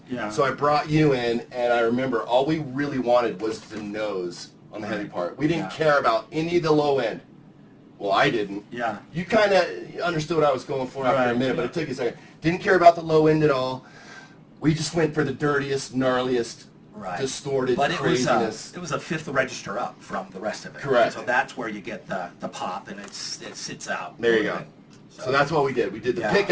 Yeah. So I brought you in, and I remember all we really wanted was the nose on the heavy part. We didn't care about any of the low end. Well, I didn't. Yeah. You kind of understood what I was going for after a minute, but yeah. it took you a second. Didn't care about the low end at all. We just went for the dirtiest, gnarliest, distorted craziness. It was a fifth register up from the rest of it. Correct. So that's where you get the pop, and it sits out. There you go. So that's what we did. We did the pick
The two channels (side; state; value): both; identical; correlation 1.00